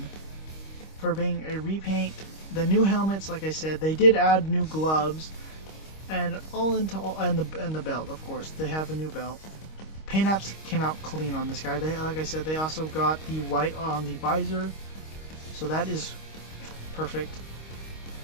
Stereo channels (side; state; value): right; late; 25 ms